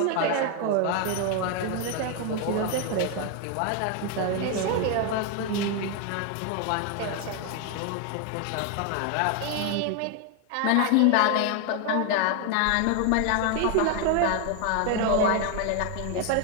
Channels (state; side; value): different; both; correlation 0.01